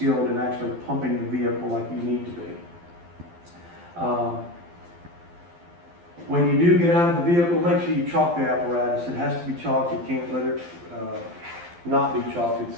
in actually pumping the vehicle like you need to be. When you do get out of the vehicle, make sure you chalk the apparatus. It has to be chalked. You can't let it not be chalked.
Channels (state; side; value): late; left; 12 ms